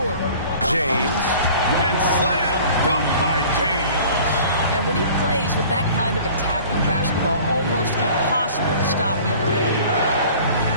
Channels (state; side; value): inverted; both; correlation -0.47